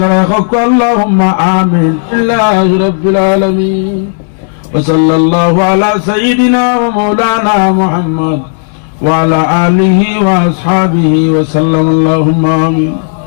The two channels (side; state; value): right; silent; digital silence